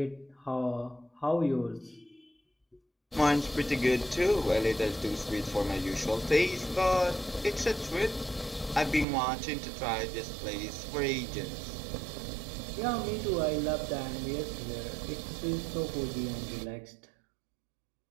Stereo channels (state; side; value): drops out; left; at 9.1 s